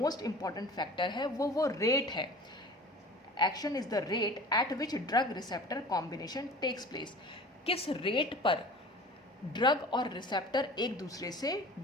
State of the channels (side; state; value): both; normal; correlation 0.41